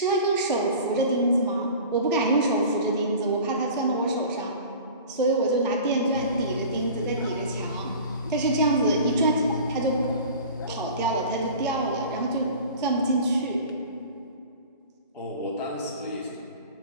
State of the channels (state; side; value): inverted; both; correlation -0.40